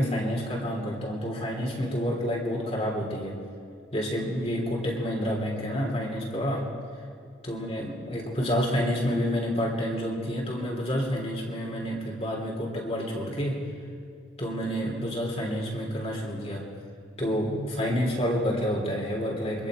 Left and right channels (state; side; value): normal; both; correlation 0.66